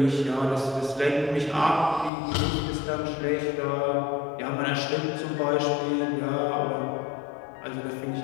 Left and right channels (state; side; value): drops out; right; at 2.1 s